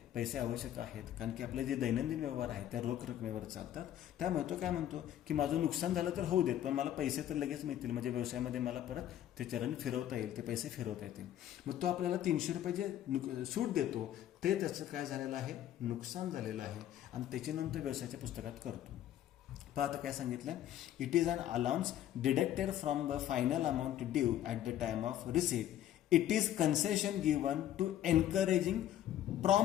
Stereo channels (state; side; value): quieter; right; 11.8 dB